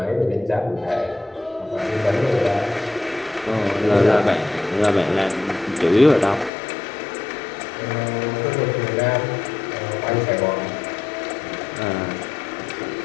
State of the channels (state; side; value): drops out; right; at 6.5 s